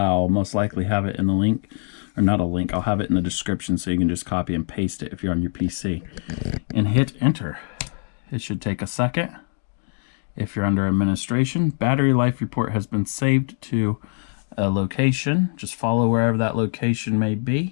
most likely have it in the link, or not a link, I'll have it in the description so you can just copy and paste it if you're on your PC. And hit enter. It should take a second. If you're under administration, battery life report has been saved to a location. Just follow wherever that location may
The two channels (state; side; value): silent; right; 57 dB below the other